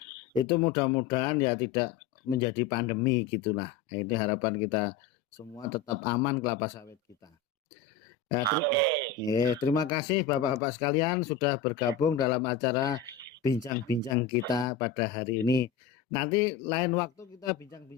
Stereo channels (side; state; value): right; quieter; 7.0 dB